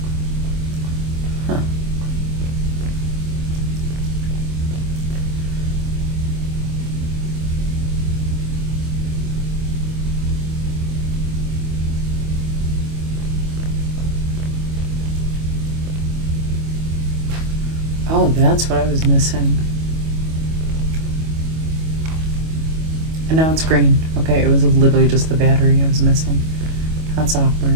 Huh. Oh, that's what I was missing. And now it's green. Okay, it was literally just the battery I was missing. That's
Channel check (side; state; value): left; late; 25 ms